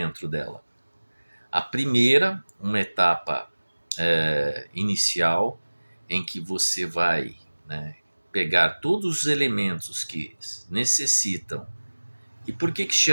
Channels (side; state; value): both; inverted; correlation -1.00